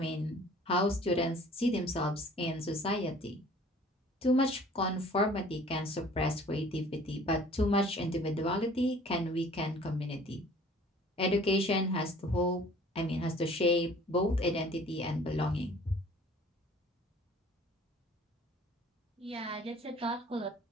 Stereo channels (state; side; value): normal; both; correlation 0.51